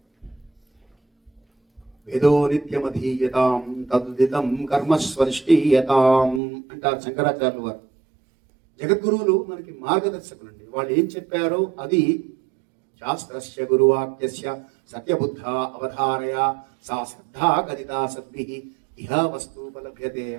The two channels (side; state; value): left; drops out; at 6.4 s